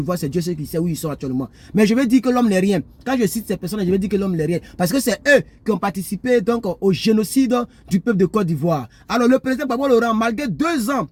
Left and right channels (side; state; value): both; identical; correlation 1.00